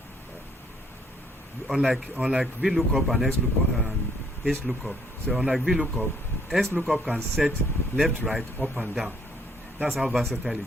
Unlike VLOOKUP and XLOOKUP and HLOOKUP. So unlike VLOOKUP, XLOOKUP can set left, right, up and down. That's how versatile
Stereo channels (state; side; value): normal; both; correlation 0.65